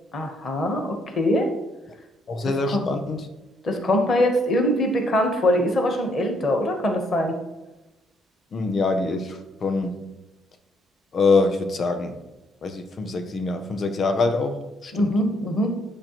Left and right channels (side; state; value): both; normal; correlation 0.71